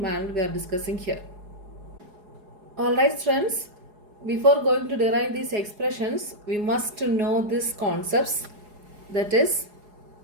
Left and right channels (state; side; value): late; left; 4.8 ms